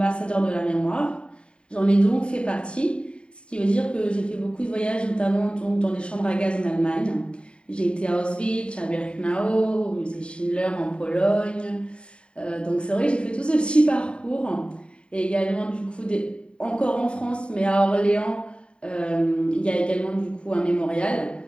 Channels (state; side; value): late; right; 0.055 ms